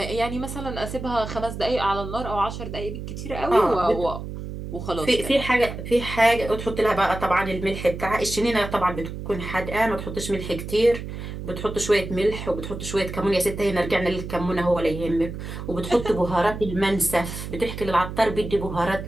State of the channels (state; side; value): noise; right; hum, 8 dB below the sound